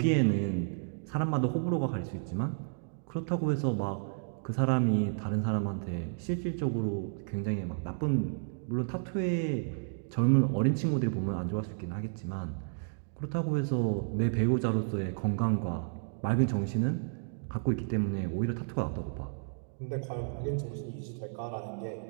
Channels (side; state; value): left; silent; digital silence